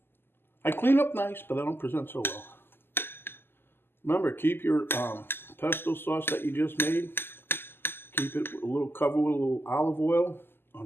I clean up nice, but I don't present so well. Remember, keep your pesto sauce that you just made. Keep it covered with a little olive oil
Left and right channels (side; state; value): right; late; 0.11 ms